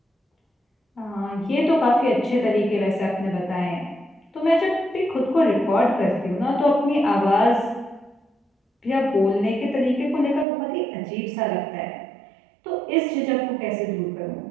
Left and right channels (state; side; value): drops out; left; at 10.5 s